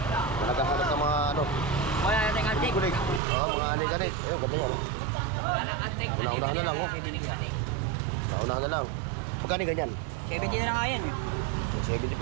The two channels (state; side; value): drops out; left; at 3.2 s